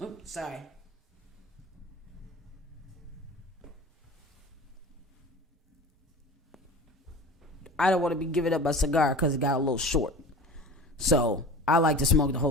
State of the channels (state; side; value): normal; both; correlation 0.36